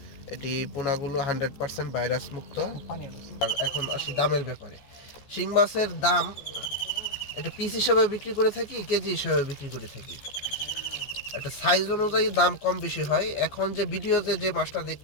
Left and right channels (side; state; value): right; late; 14 ms